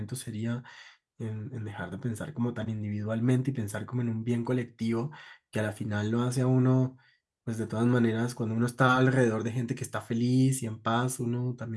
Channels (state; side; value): identical; both; correlation 1.00